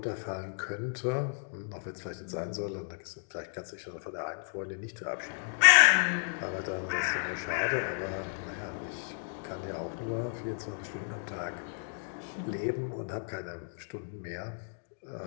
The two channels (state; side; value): silent; right; digital silence